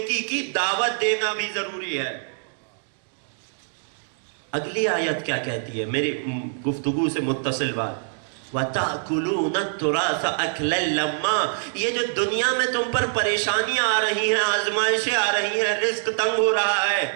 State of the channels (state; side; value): silent; left; digital silence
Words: کی دعوت دینا بھی ضروری ہے. اگلی آیت کیا کہتی ہے؟ میری گفتگو سے متصل بات. وَتَأْكُلُونَ التُّرَاثَ أَكْلًا لَمًّا، یہ جو دنیا میں تم پر پریشانیاں آ رہی ہیں، آزمائشیں آ رہی ہیں، رزق تنگ ہو رہا ہے،